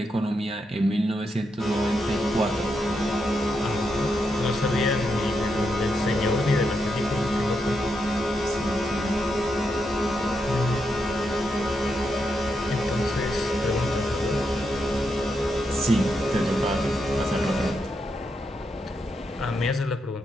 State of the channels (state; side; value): normal; both; correlation 0.83